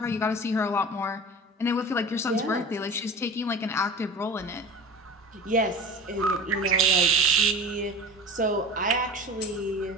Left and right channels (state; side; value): normal; both; correlation 0.35